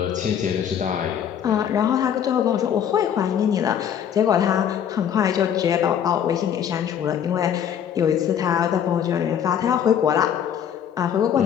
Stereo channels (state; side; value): quieter; right; 8.9 dB